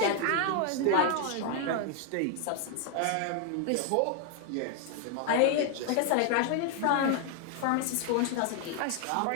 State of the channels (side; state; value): both; different; correlation 0.00